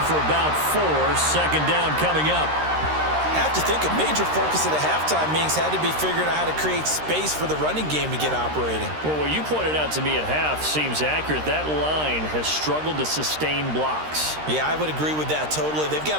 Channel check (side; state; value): left; late; 13 ms